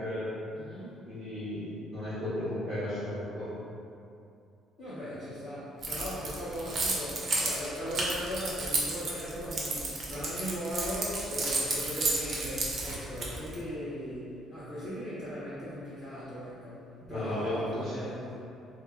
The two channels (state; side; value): normal; both; correlation 0.68